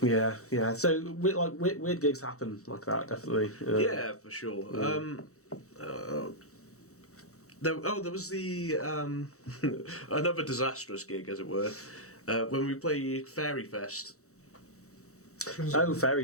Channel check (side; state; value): right; late; 0.65 ms